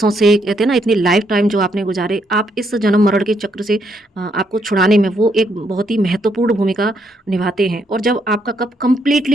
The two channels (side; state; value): both; normal; correlation 0.75